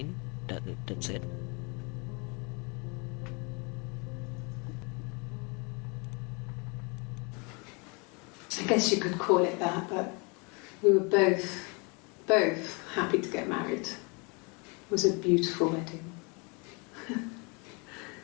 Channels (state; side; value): quieter; right; 31.3 dB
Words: that's it? I guess you could call it that, but we were both happy to get married. It was a beautiful wedding.